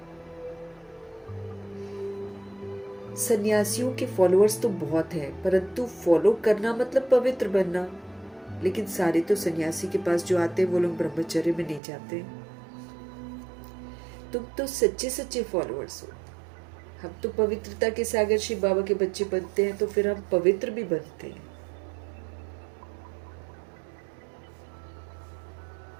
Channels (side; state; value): left; drops out; at 11.8 s